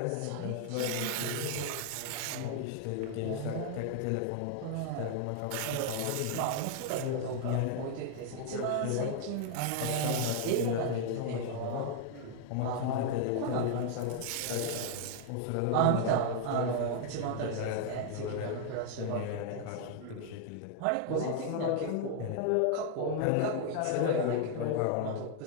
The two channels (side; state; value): both; different; correlation 0.00